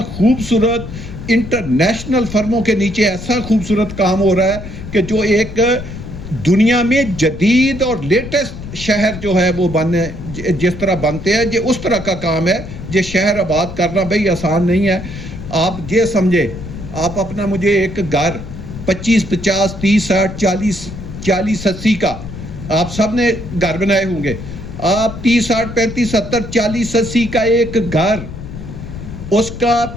خوبصورت انٹرنیشنل فرموں کے نیچے ایسا خوبصورت کام ہو رہا ہے کہ جو ایک دنیا میں جدید اور لیٹسٹ شہر جو ہے وہ جس طرح بنتے ہیں، یہ اس طرح کا کام ہے۔ یہ شہر آباد کرنا بھئی آسان نہیں ہے۔ آپ یہ سمجھے، آپ اپنا مجھے ایک گھر 25, 50, 30, 60, 40, 80 کا آپ سب نے گھر بنائے ہوں گے، آپ 30, 60, 35, 70, 40, 80 کا ایک گھر، اس کا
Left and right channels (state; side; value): noise; left; rumble, 10 dB below the sound